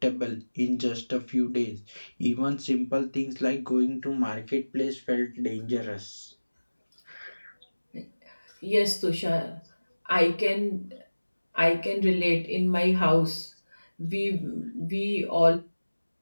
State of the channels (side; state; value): both; inverted; correlation -1.00